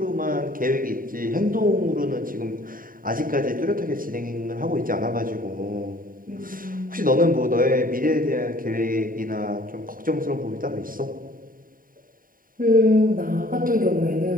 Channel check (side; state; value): left; late; 0.41 ms